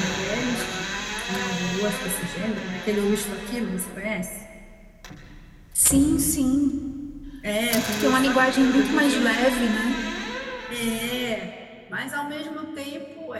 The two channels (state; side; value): identical; both; correlation 1.00